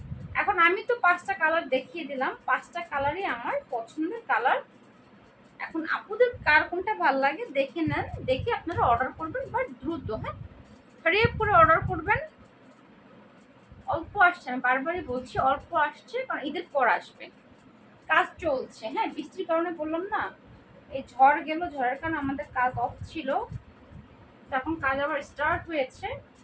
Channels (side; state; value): both; identical; correlation 1.00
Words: এখন আমি তো 5টা কালার দেখিয়ে দিলাম, 5টা কালারই আমার পছন্দের কালার। এখন আপুদের কার কোনটা ভালো লাগে দেখে নেন, দেখে আপনারা অর্ডার করবেন, বাট দ্রুত, হ্যাঁ হারিয়ে করে অর্ডার করবেন। অল্প আসছে, আমি বারবারই বলছি অল্প আসছে, কারণ ঈদের পর আসবে, কাজ চলছে। হ্যাঁ বৃষ্টির কারণে বললাম না, এই ঝড় গেল, ঝড়ের কারণে আমাদের কাজ অফ ছিল, এখন কাজ আবার স্টার্ট হয়েছে।